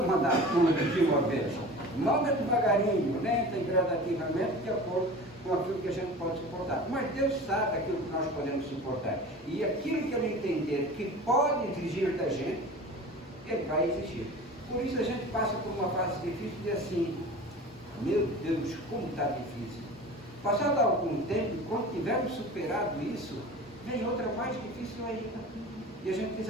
mandar tudo de uma vez. Manda devagarinho, lenta e gradativamente, de acordo com aquilo que a gente pode suportar. Mas Deus sabe aquilo que nós podemos suportar. E aquilo que Ele entender que pode exigir da gente, Ele vai exigir. Por isso a gente passa por uma fase difícil e assim: meu Deus, como está difícil. Passado algum tempo, quando tivermos superado isso, vem outra mais difícil ainda. E a gente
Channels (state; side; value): normal; both; correlation 0.37